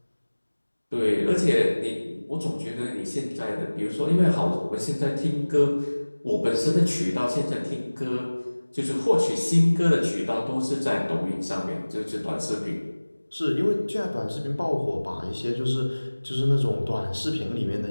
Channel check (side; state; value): both; inverted; correlation -1.00